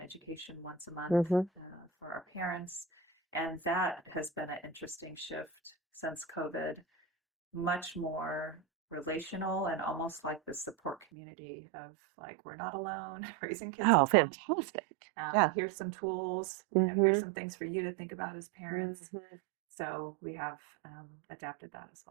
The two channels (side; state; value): left; drops out; at 11.1 s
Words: education once a month Mm-hmm. for our parents, and that has been an interesting shift since COVID. Much more relational and almost like the support community of, like, we're not alone raising kids Oh, at home. fantastic. Yeah. Here's some tools. Here's Mm-hmm. some things for you to think about as parents. Mm-hmm. So we have adapted that as